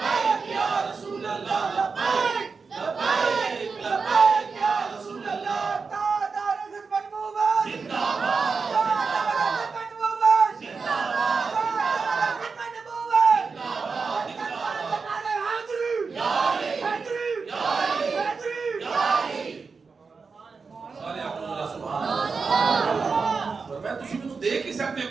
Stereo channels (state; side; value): quieter; left; 4.9 dB